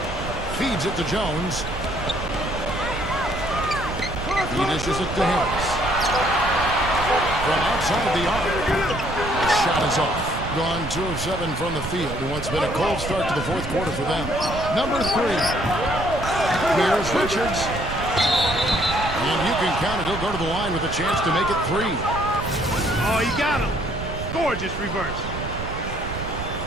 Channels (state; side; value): noise; right; rumble, 7 dB below the sound